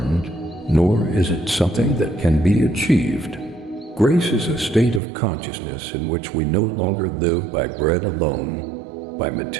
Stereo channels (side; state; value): left; drops out; at 5.0 s